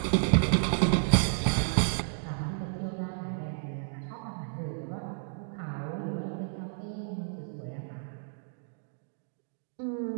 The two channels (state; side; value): silent; left; digital silence